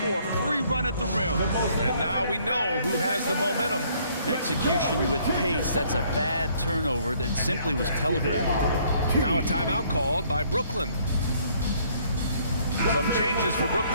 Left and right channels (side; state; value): both; inverted; correlation -0.63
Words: a free run at the rim. And now we know who has the momentum. Execution with pace. That's a bad turnover that simply was telegraphed. Now a timeout called by Brooklyn. Some changes for